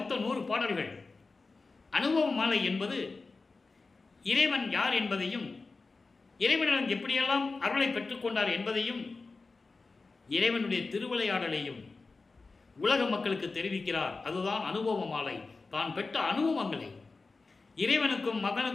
100 பாடல்கள். அனுபவ மாலை என்பது இறைவன் யார் என்பதையும், இறைவனிடம் எப்படியெல்லாம் அருளை பெற்றுக்கொண்டார் என்பதையும், இறைவனுடைய திருவிளையாடலையும் உலக மக்களுக்கு தெரிவிக்கிறார். அதுதான் அனுபவ மாலை. தான் பெற்ற அனுபவங்களை, இறைவனுக்கும்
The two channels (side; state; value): right; quieter; 3.9 dB